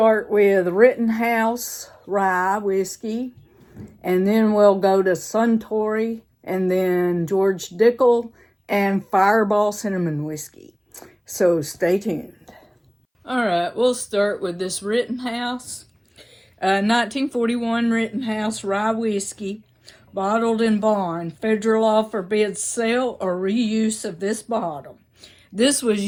with Rittenhouse Rye Whiskey, and then we'll go to Suntory, and then George Dickel, and Fireball Cinnamon Whiskey. So stay tuned. Alright, we'll start with this Rittenhouse. 1941 Rittenhouse Rye Whiskey. Bottled in bond. Federal law forbids sale or reuse of this bottle. This was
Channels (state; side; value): identical; both; correlation 1.00